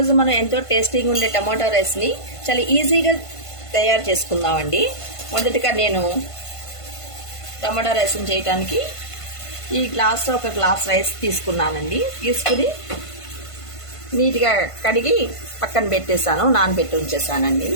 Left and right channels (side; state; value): right; late; 1.5 ms